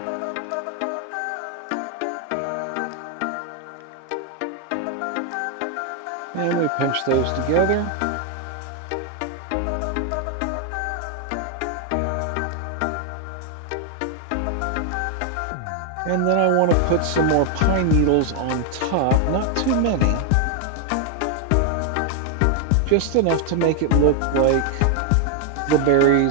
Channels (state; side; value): different; both; correlation 0.00